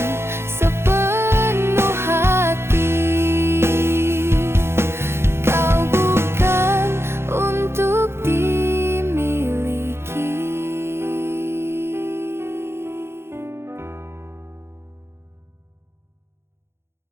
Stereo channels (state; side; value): late; left; 0.12 ms